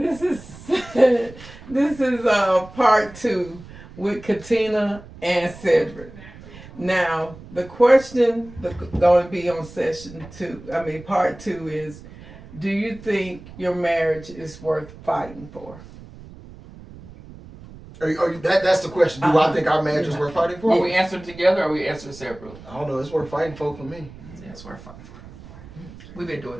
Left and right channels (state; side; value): noise; right; rumble, 18 dB below the sound